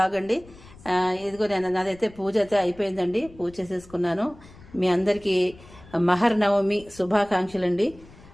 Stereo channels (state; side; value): noise; left; rumble, 22 dB below the sound